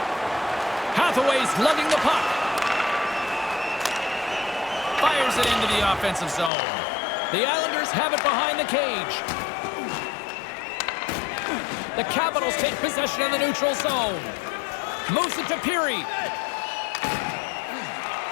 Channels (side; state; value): right; drops out; at 6.5 s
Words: Hathaway's lugging the puck. Fires it into the offensive zone. The Islanders have it behind the cage. The Capitals take possession in the neutral zone. Moves it to Peary.